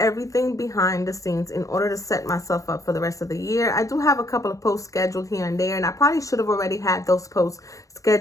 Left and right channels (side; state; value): right; late; 0.16 ms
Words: behind the scenes in order to set myself up for the rest of the year. I do have a couple of posts scheduled here and there, and I probably should have already had those posts